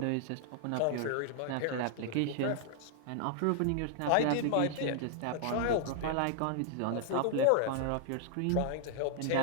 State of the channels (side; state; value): both; different; correlation 0.00